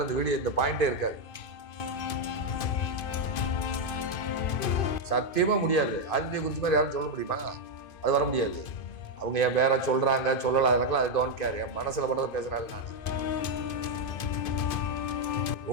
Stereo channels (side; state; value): right; late; 2.5 ms